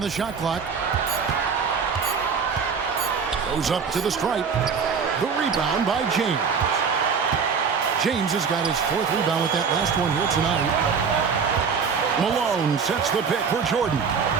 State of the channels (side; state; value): left; quieter; 6.0 dB